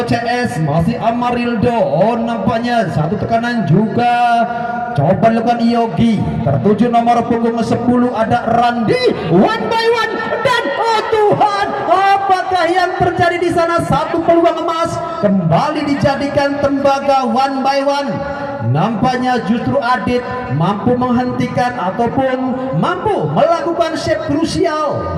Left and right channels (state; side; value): identical; both; correlation 1.00